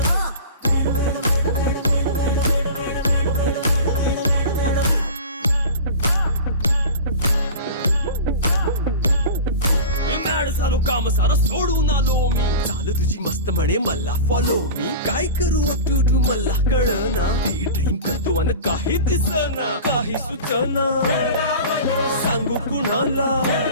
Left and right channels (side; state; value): both; inverted; correlation -0.33